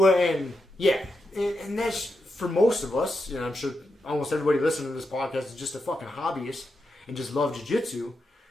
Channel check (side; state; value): both; normal; correlation 0.86